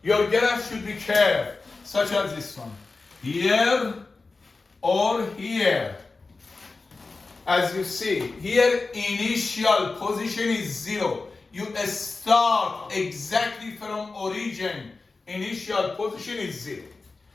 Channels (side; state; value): right; quieter; 3.8 dB